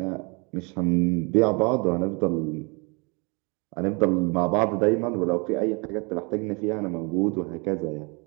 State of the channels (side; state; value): left; quieter; 31.0 dB